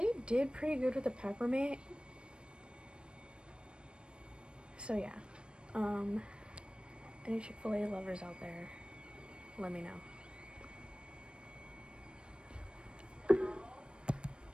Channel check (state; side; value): late; left; 0.056 ms